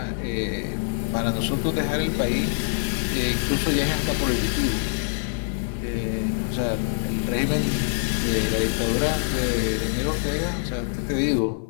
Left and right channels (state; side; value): silent; right; digital silence